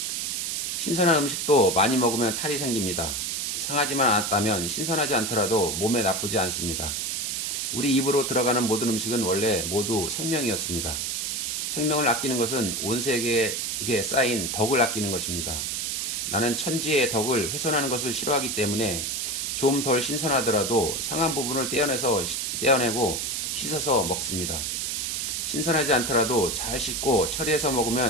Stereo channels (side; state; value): right; noise; hiss, 1 dB below the sound